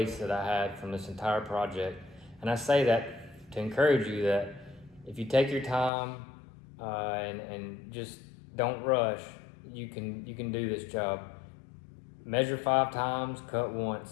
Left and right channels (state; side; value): drops out; right; at 5.9 s